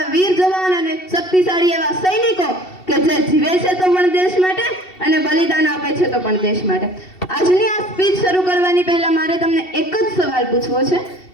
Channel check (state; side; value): late; right; 2.7 ms